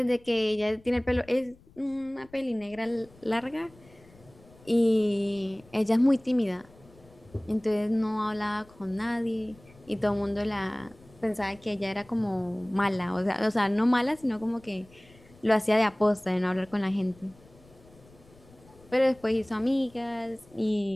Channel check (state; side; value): noise; left; rumble, 26 dB below the sound